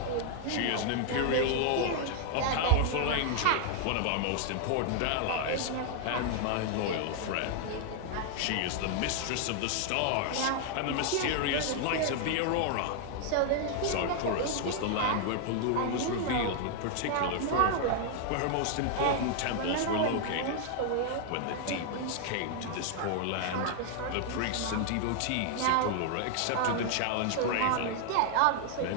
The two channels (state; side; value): different; both; correlation 0.00